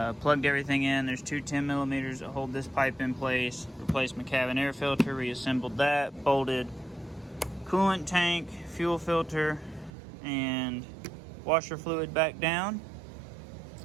Plugged everything in. There's 2 10mm that hold this pipe in place. Replaced my cabin air filter, reassembled that, bolted coolant tank, fuel filter, and washer fluid back down,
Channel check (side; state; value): left; drops out; at 9.9 s